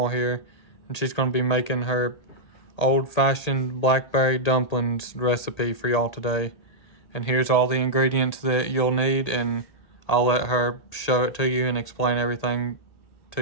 here, and she's going to be making her old-fashioned blackberry dumplings recipe for y'all today. And here's all the ingredients that you'll need, and I'll let her show it to you and explain everything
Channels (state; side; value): late; right; 1.8 ms